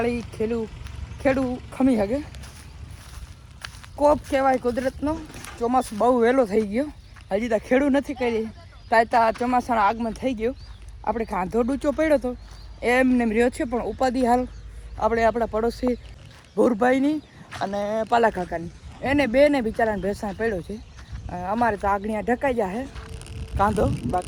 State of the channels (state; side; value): identical; both; correlation 1.00